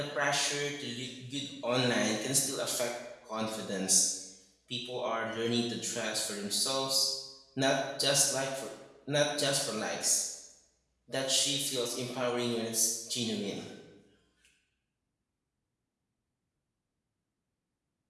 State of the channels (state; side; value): identical; both; correlation 1.00